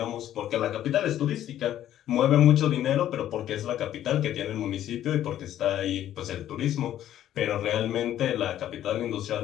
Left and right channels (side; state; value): right; quieter; 11.8 dB